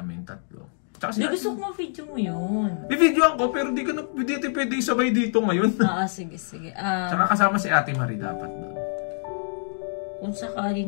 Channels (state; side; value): silent; right; digital silence